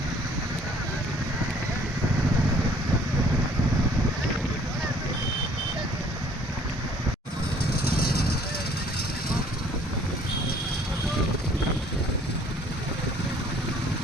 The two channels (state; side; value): normal; both; correlation 0.58